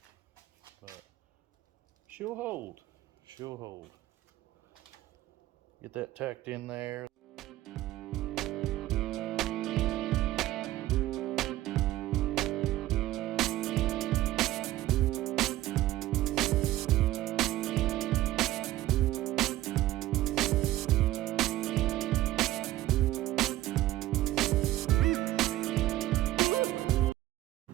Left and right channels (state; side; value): quieter; left; 15.4 dB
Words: But she'll hold. she'll hold. Get that tacked in there.